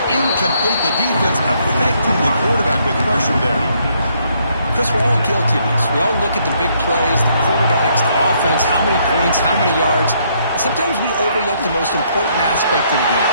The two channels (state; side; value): inverted; both; correlation -0.70